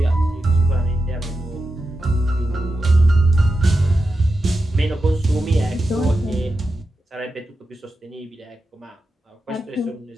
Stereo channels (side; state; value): both; normal; correlation 0.89